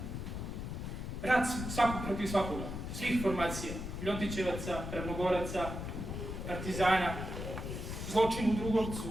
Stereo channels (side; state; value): left; noise; rumble, 5 dB below the sound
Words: rat svakog protiv svakoga, svih formacija, Ljotićevaca, Ravnogoraca, partizana, zločin u Drugovcu.